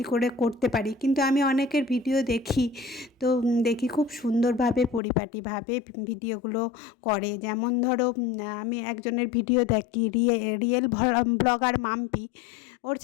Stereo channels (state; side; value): drops out; right; at 5.0 s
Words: করে করতে পারি, কিন্তু আমি অনেকের ভিডিও দেখি, তো দেখি খুব সুন্দরভাবে পরিপাটিভাবে ভিডিওগুলো করে। যেমন ধরো আমি একজনের ভিডিও দেখি, রিয়েল ব্লগার মাম্পি, ওর